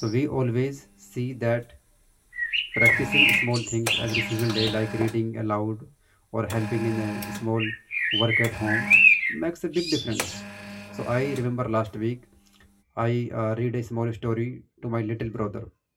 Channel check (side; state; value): both; identical; correlation 1.00